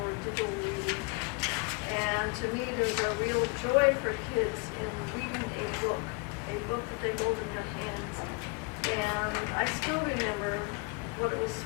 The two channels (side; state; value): right; quieter; 31.4 dB